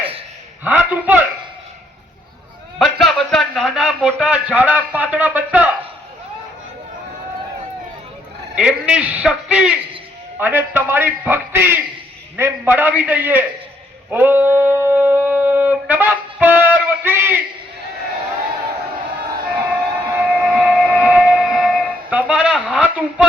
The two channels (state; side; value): normal; both; correlation 0.71